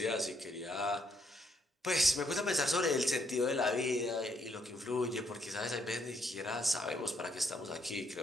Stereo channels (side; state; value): both; normal; correlation 0.73